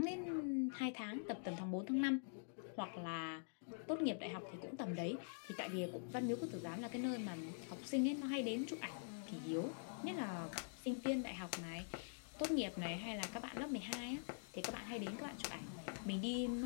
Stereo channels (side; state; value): right; silent; digital silence